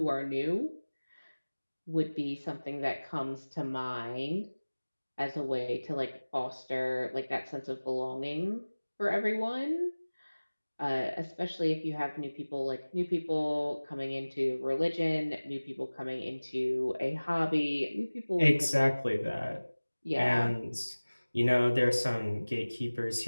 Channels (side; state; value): both; inverted; correlation -1.00